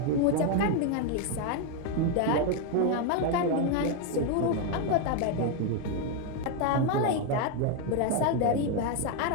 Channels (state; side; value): different; both; correlation 0.01